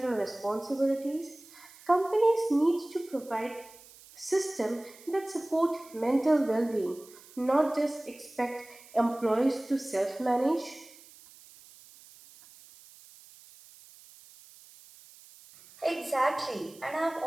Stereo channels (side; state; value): right; noise; hiss, 22 dB below the sound